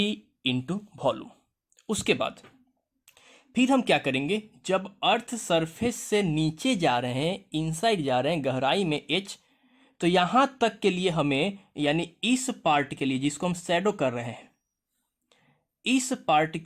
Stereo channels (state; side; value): identical; both; correlation 1.00